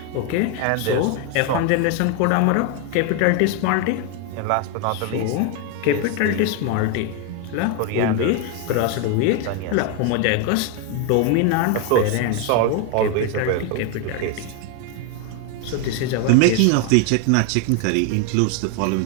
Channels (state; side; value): different; both; correlation 0.01